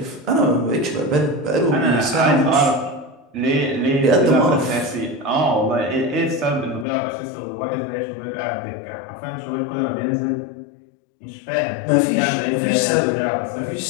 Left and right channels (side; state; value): right; drops out; at 6.9 s